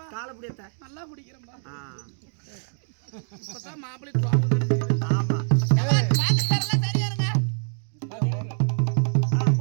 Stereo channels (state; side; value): silent; left; digital silence